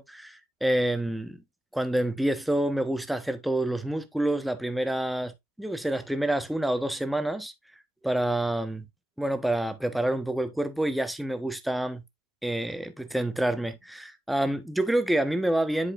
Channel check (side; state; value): both; normal; correlation 0.93